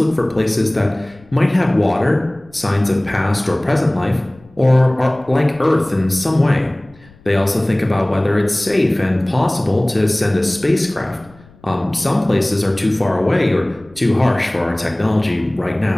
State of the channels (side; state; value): left; noise; rumble, 26 dB below the sound